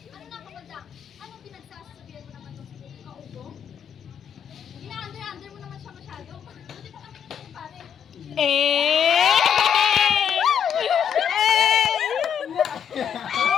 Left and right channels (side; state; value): right; quieter; 8.2 dB